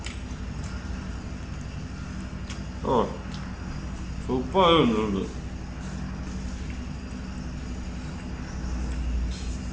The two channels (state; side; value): identical; both; correlation 1.00